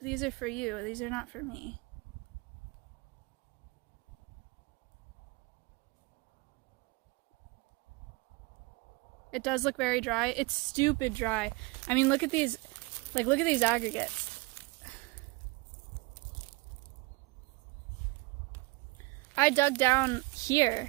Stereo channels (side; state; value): left; quieter; 24.5 dB